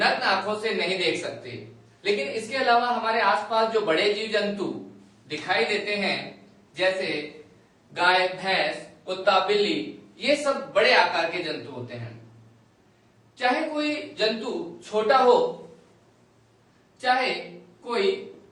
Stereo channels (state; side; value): identical; both; correlation 1.00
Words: आंखों से नहीं देख सकते। लेकिन इसके अलावा हमारे आसपास जो बड़े जीव जंतु दिखाई देते हैं, जैसे गाय, भैंस, कुत्ता, बिल्ली, ये सब बड़े आकार के जंतु होते हैं। चाहे कोई जंतु छोटा हो चाहे कोई